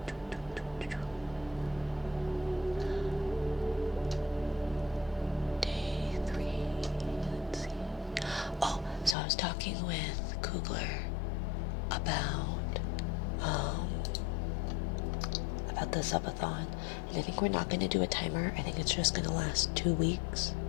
Day 3, let's see. Oh, so I was talking with Kugler about the subathon, and I think we're not going to do a timer. I think it's just going to last 2 weeks.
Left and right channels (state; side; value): drops out; right; at 9.2 s